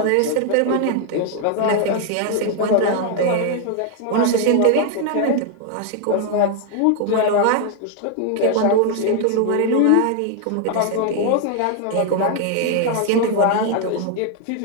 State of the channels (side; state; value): both; different; correlation 0.00